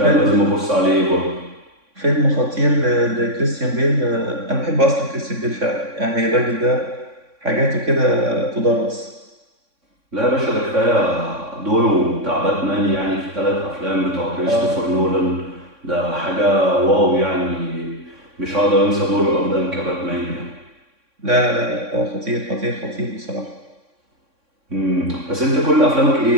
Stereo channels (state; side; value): late; left; 3.6 ms